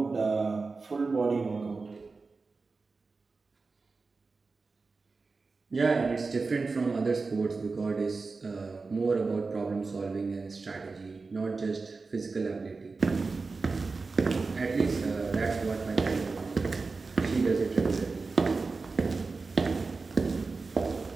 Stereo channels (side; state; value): left; quieter; 4.1 dB